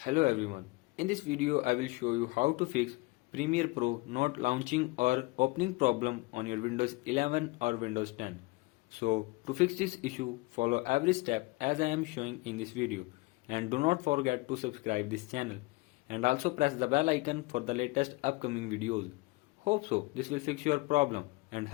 Hello everyone. In this video I will show you how to fix Premiere Pro not launching or opening problem on your Windows 11 or Windows 10. So to fix this issue, follow every step as I am showing in this video, and do not forget to subscribe this channel and also press the bell icon for the latest upcoming videos. Hope so this will fix your problem and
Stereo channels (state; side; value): quieter; right; 23.2 dB